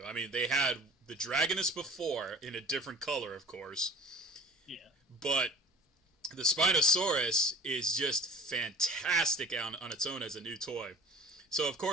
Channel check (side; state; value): both; normal; correlation 0.43